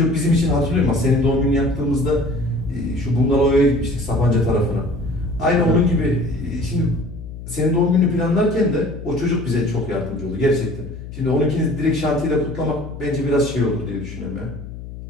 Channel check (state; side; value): noise; left; hum, 12 dB below the sound